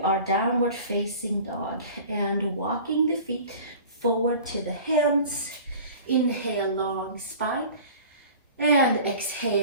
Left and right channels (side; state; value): both; inverted; correlation -0.41